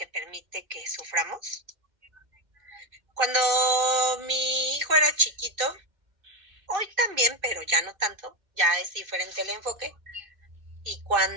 permite que suframos? Cuando mi hijo era chiquito, hoy también, pero ya no tanto, ya es diferente el enfoque. Y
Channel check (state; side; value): late; left; 2.6 ms